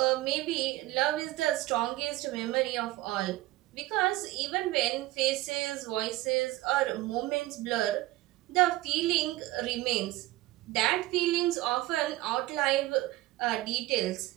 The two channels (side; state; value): left; quieter; 17.9 dB